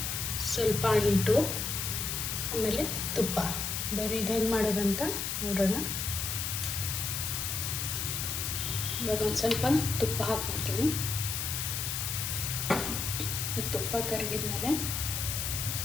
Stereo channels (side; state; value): left; noise; hiss, 2 dB below the sound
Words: ಸ್ವಲ್ಪ ಅಂಟು, ಆಮೇಲೆ ತುಪ್ಪ. ಬರೀ ಇದು ಹೆಂಗೆ ಮಾಡೋದಂತ ನೋಡೋಣ. ಇವಾಗ ಒಂದು ಸ್ವಲ್ಪ ತುಪ್ಪ ಹಾಕ್ಕೊಳ್ತೀನಿ. ತುಪ್ಪ ಕರಗಿದ್ಮೇಲೆ